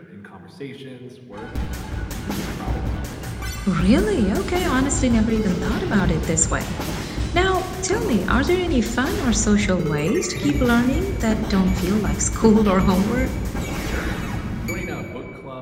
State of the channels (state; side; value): identical; both; correlation 1.00